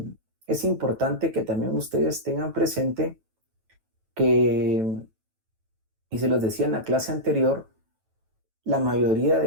importante que también ustedes tengan presente que, y se los decía en la clase anterior, la mayoría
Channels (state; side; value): late; left; 9.1 ms